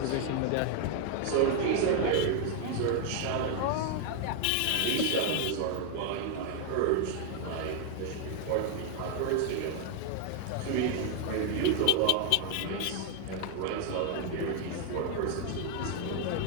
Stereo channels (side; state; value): both; different; correlation 0.00